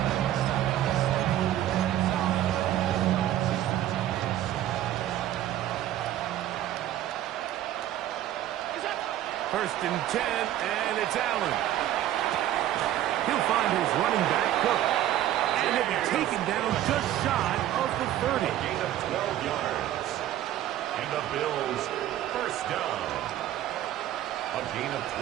First and 10, and it's Allen. He'll find his running back, Cook. And he'll be taken down just shy of the 30. Gain of 12 yards. And the Bills first down. A gain of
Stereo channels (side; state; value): left; quieter; 12.7 dB